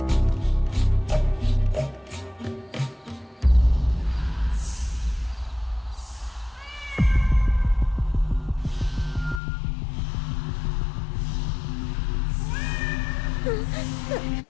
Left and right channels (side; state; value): right; drops out; at 9.4 s